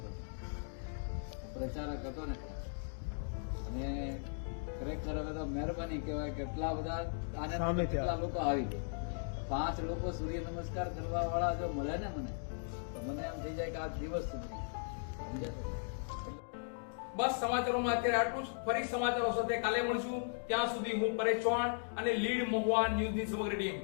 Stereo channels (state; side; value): silent; right; digital silence